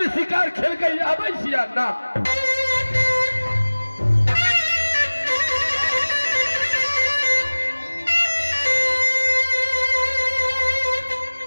शिकार खेल के आबै छिया ना।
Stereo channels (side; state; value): both; inverted; correlation -1.00